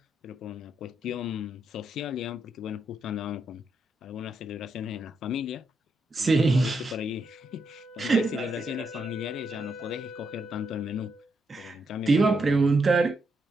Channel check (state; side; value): normal; both; correlation 0.81